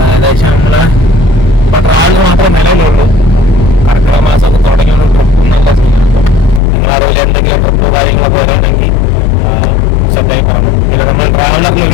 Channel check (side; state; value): right; drops out; at 6.6 s